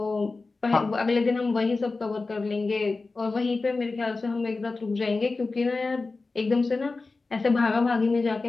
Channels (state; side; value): quieter; right; 3.7 dB